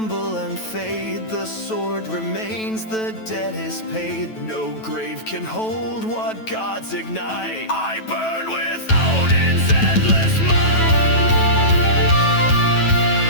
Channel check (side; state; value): right; late; 9.2 ms